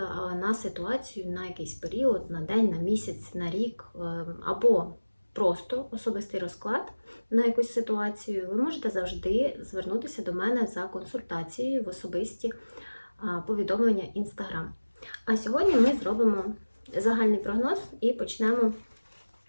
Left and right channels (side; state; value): both; inverted; correlation -1.00